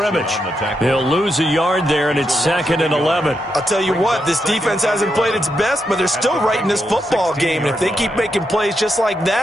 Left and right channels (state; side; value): normal; both; correlation 0.83